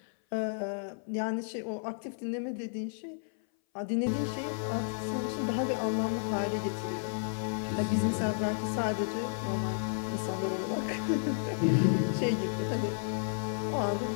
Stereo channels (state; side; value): silent; right; 56 dB below the other